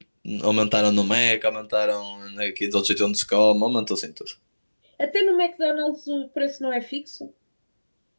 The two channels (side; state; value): both; inverted; correlation -1.00